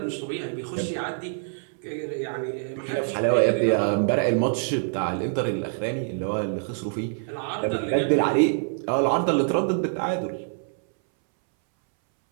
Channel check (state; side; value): silent; left; 61 dB below the other